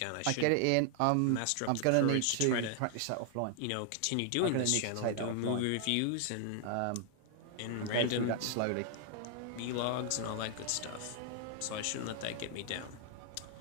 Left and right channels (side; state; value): both; different; correlation 0.00